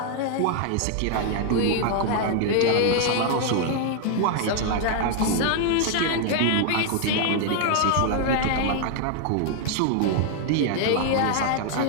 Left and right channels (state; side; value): different; both; correlation 0.00